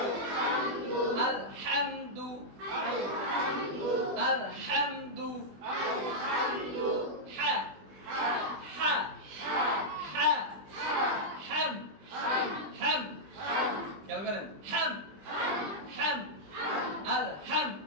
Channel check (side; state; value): left; late; 20 ms